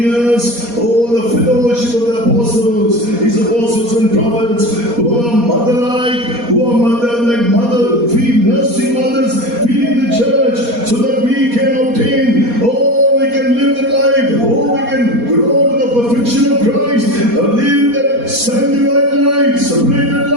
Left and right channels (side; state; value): left; late; 4.2 ms